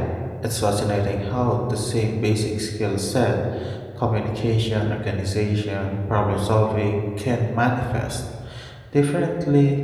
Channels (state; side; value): identical; both; correlation 1.00